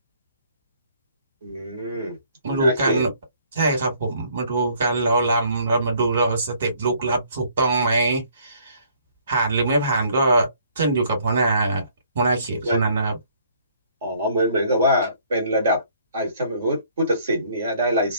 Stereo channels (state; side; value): inverted; both; correlation -0.62